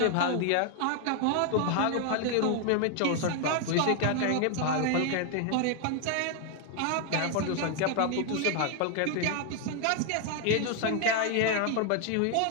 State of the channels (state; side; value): different; both; correlation 0.01